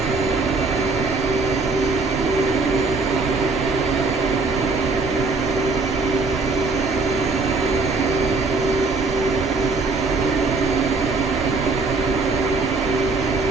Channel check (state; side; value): quieter; left; 3.7 dB